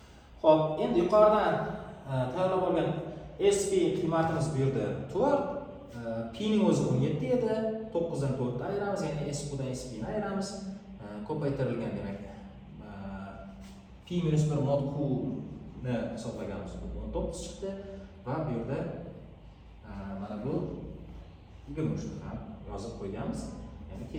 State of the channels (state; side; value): identical; both; correlation 1.00